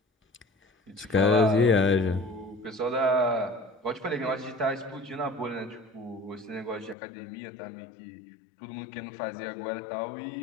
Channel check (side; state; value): right; drops out; at 7.0 s